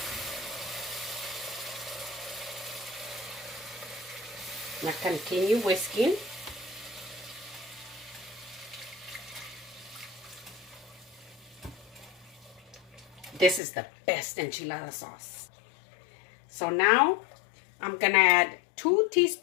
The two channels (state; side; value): drops out; right; at 13.6 s